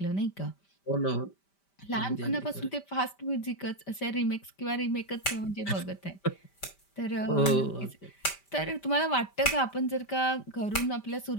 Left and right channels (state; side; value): late; right; 5.1 ms